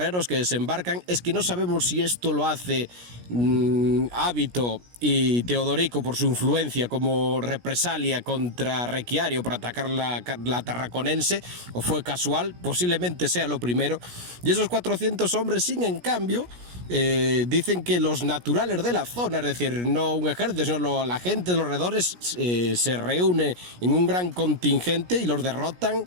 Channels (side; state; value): left; late; 17 ms